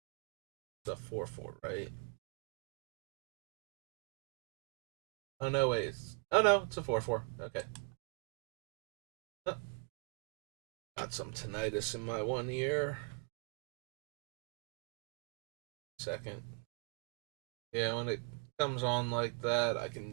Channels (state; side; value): quieter; left; 36.8 dB